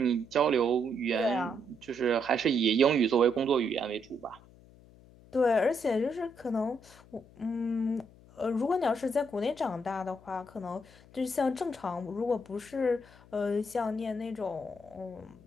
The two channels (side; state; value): left; noise; hum, 24 dB below the sound